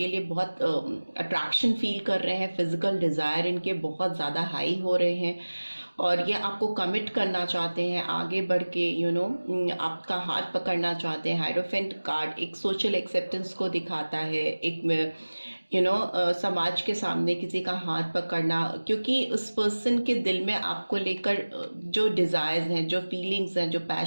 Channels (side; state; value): both; inverted; correlation -1.00